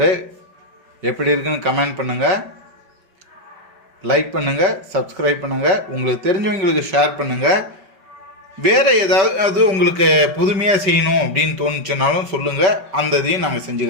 எப்படி இருக்குன்னு கமெண்ட் பண்ணுங்கள், லைக் பண்ணுங்கள், சப்ஸ்கிரைப் பண்ணுங்கள், உங்களுக்கு தெரிஞ்சவங்களுக்கு ஷேர் பண்ணுங்கள். வேறு ஏதாவது உங்களுக்கு புதுமையாக செய்யணும் அப்படின்னு தோணுச்சுனாலும் சொல்லுங்கள், அந்த இதையும் நாங்கள் செஞ்சு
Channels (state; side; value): late; left; 5.2 ms